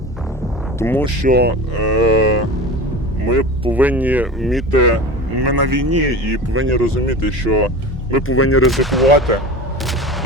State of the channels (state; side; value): normal; both; correlation 0.31